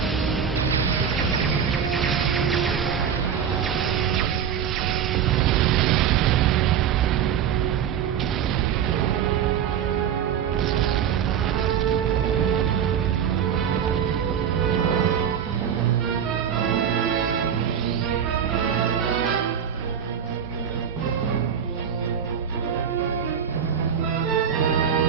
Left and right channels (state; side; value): quieter; left; 8.2 dB